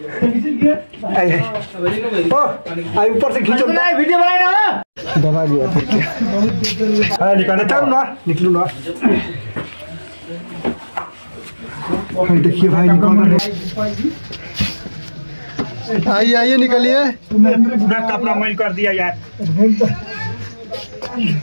ऊपर से खींचो वीडियो बनाए ना दबा दिया निकलना चल ना निकलू ना देखिए भाई निकल रहे आइए आइए निकलिए पूरा कपड़ा मैल कर दिया यार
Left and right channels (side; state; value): both; inverted; correlation -1.00